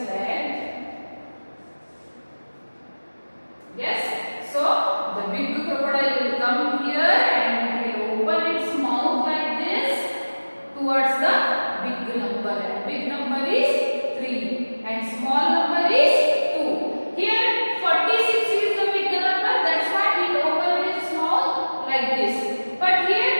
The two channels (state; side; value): inverted; both; correlation -1.00